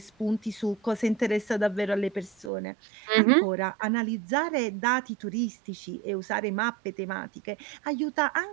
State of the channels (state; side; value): drops out; left; at 2.5 s